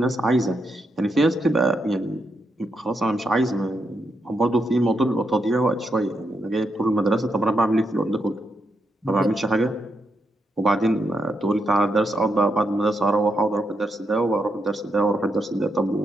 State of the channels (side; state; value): both; normal; correlation 0.82